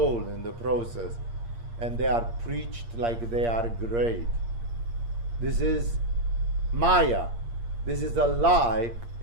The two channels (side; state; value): left; late; 8.6 ms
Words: in the process. And they are preached like they are great. This is Maya. This is a lie